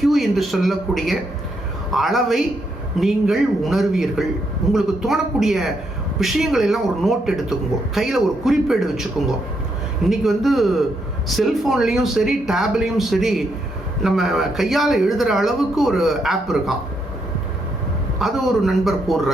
என்று சொல்லக்கூடிய அளவை நீங்கள் உணர்வீர்கள். உங்களுக்கு தோணக்கூடிய விஷயங்கள் எல்லாம் ஒரு நோட் எடுத்துக்கோங்க, கையில் ஒரு குறிப்பேடு வச்சுக்கோங்க. இன்னைக்கு செல்ஃபோன்லேயும் சரி டேப்லேயும் சரி நம்ம கையால் எழுதுகிற அளவுக்கு ஒரு ஆப் இருக்கான். அது ஒரு நண்பர்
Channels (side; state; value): both; normal; correlation 0.78